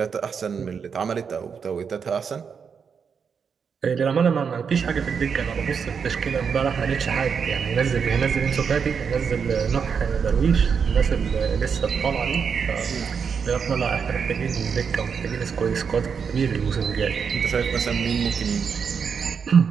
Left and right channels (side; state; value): left; quieter; 6.4 dB